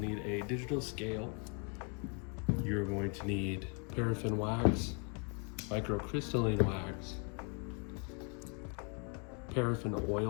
a digital scale. You're going to need paraffin wax, microcrystalline wax, paraffin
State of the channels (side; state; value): right; quieter; 37.5 dB